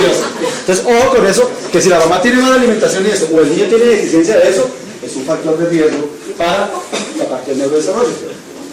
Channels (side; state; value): both; identical; correlation 1.00